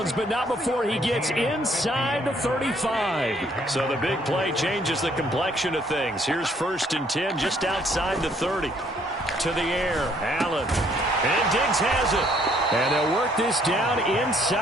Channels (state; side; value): normal; both; correlation 0.65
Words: but not before he gets inside the 35. So the big play changes the complexion of things. Here's 1st and 10 just outside the 30. To the air, Allen. And Diggs has it. And they'll work this down